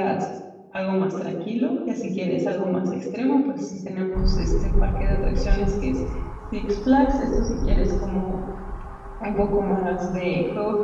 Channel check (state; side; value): identical; both; correlation 1.00